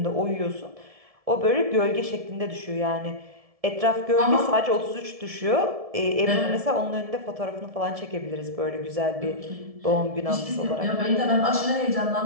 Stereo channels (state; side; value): late; left; 1.7 ms